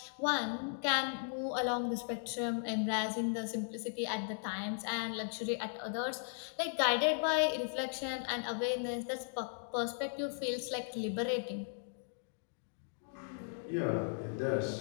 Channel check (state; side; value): silent; right; digital silence